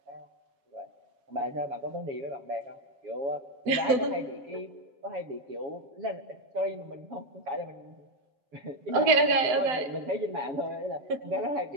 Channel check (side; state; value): left; late; 7.8 ms